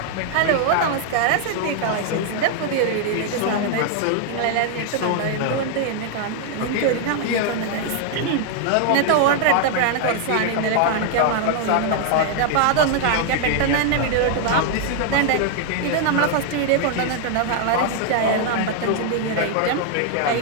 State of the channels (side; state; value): both; different; correlation 0.00